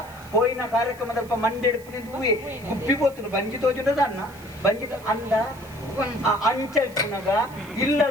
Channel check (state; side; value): noise; right; hiss, 23 dB below the sound